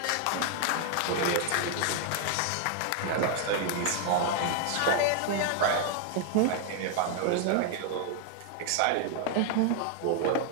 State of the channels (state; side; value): different; both; correlation 0.00